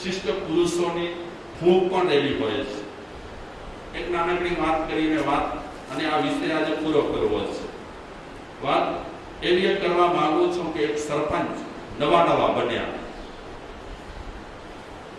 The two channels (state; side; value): identical; both; correlation 1.00